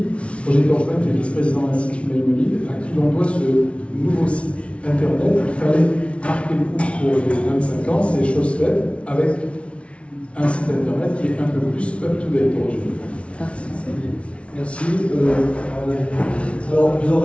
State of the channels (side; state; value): right; late; 0.061 ms